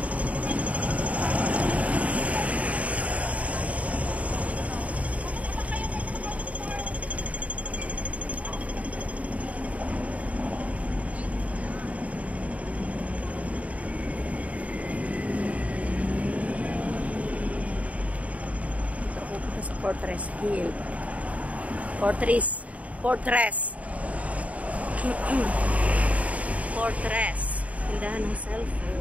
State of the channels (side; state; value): left; late; 0.068 ms